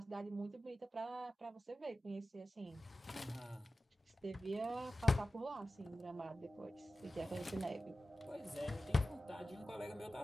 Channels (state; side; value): normal; both; correlation 0.94